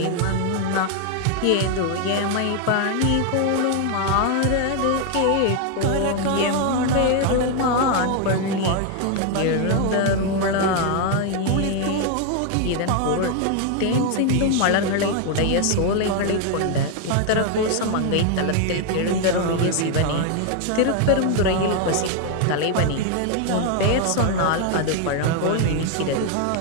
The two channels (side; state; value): both; different; correlation 0.01